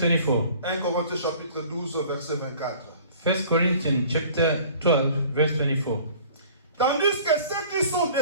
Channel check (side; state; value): both; inverted; correlation -0.49